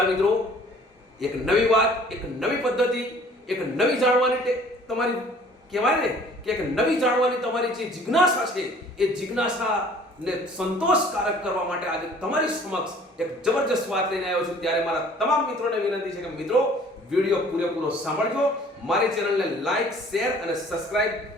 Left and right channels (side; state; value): both; normal; correlation 0.53